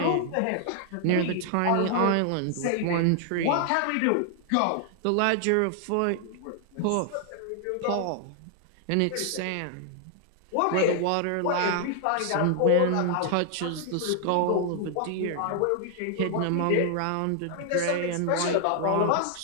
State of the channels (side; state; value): both; different; correlation 0.00